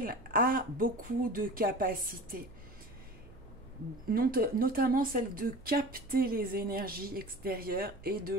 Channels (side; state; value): right; noise; hum, 21 dB below the sound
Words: a beaucoup de capacités, notamment celle de capter les énergies extérieures et de